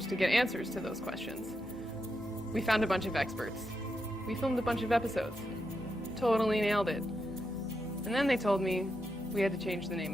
to get answers to those questions. We found a bunch of experts. We filmed a bunch of episodes. Totally nailed it. And then they told me we had to change the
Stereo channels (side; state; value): both; normal; correlation 0.85